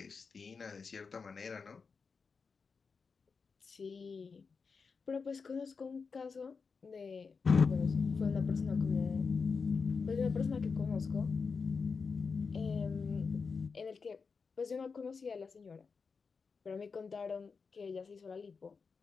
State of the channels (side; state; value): right; quieter; 5.1 dB